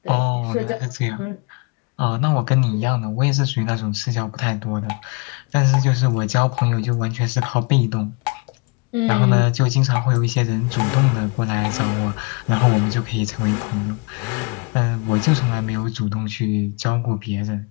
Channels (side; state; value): right; quieter; 30.1 dB